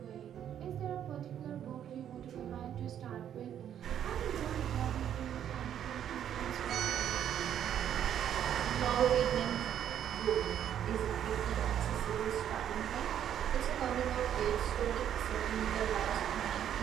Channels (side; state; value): left; quieter; 9.9 dB